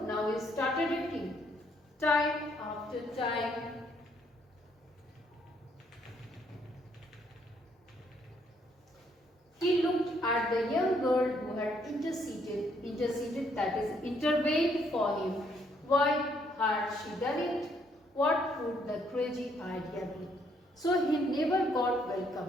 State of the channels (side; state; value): both; normal; correlation 0.70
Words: Now he started eating. Time after time. He looked at the young girl who had interceded, that is, intervened for him. Why had she done it? What would the crazy idea be? So he never got